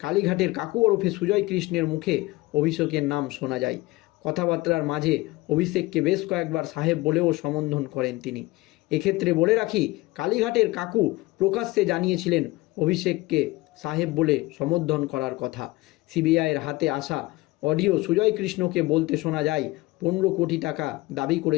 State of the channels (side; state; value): right; quieter; 20.7 dB